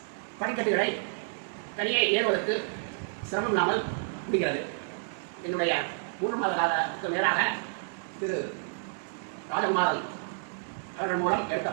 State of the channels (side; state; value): left; silent; digital silence